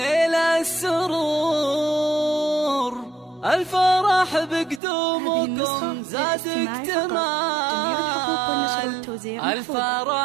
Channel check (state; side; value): drops out; left; at 4.8 s